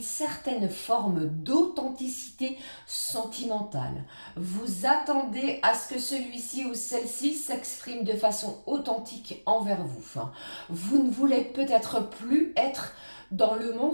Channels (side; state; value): both; inverted; correlation -1.00